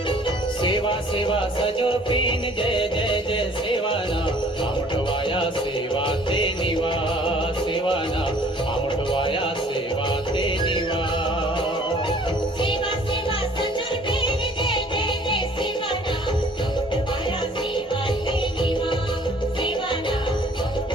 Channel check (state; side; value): normal; both; correlation 0.55